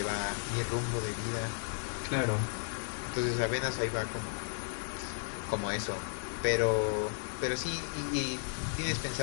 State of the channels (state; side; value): silent; right; 55 dB below the other